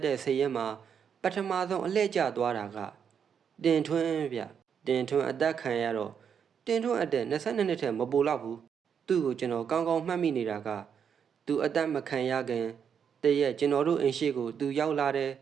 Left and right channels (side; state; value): left; quieter; 7.4 dB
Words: တဲ့စိတ်ရဲမှာပထမဆုံးအလှည့်ကျသွားတာကတင်ထွန်းဗျတင်ထွန်းအသက်ခံရတော့တင်ထွန်းအသက်22 နှစ်ထက်မပိုတော့ဘူးသူ့ကိုကျွန်တော်ကောင်းကောင်းမှတ်မိနေတာကသူအသက်မခံရခင်တရက်ကျွန်တော်တို့အိမ်ရှိကိုသူရောက်လာတယ်